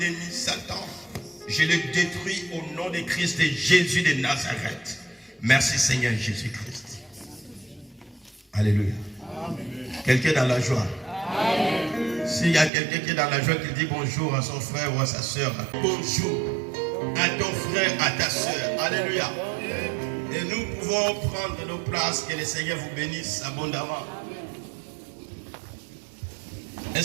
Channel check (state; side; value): drops out; left; at 12.7 s